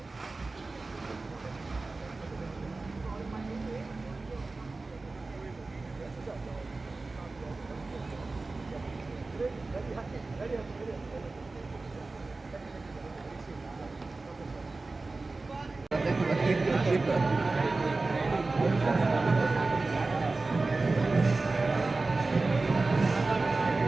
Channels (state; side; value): quieter; left; 3.5 dB